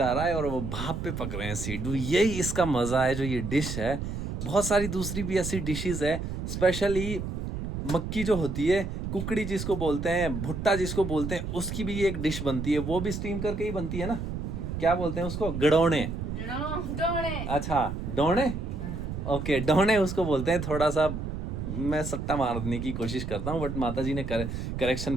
रहा है और वो भाप पे पक रहे हैं सिड्डू। यही इसका मज़ा है जो ये डिश है। बहुत सारी दूसरी भी ऐसी डिशेस है, स्पेशली मक्की जो होती है, कुकड़ी जिसको बोलते हैं, भुट्टा जिसको बोलते हैं, उसकी भी एक डिश बनती है, वो भी स्टीम करके ही बनती है ना। क्या बोलते हैं उसको? गड़ौने। डोने। अच्छा डोने, ओके डोने उसको बोलते हैं। थोड़ा सा मैं सट्टा मारने की कोशिश करता हूँ बट माता जी ने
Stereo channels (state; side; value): noise; right; rumble, 5 dB below the sound